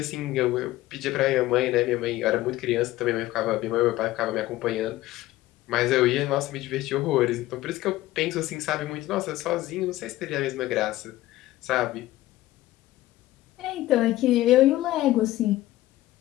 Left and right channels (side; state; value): right; quieter; 16.3 dB